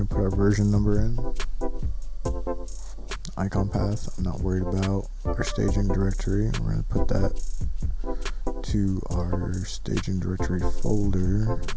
to put our version number in. Icon path, I'm not worried about. Our staging directory, we're going to put that to our staging directory folder,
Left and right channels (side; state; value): both; identical; correlation 1.00